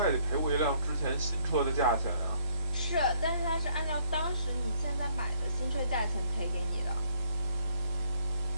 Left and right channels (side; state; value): both; inverted; correlation -0.64